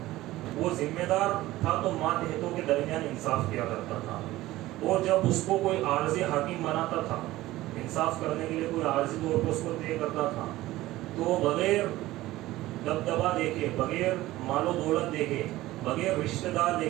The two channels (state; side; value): quieter; left; 16.9 dB